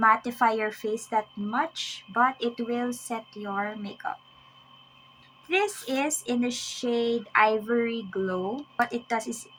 your face that much, but it will set your makeup. This is in the shade Ivory Glow. What it does is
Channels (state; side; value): identical; both; correlation 1.00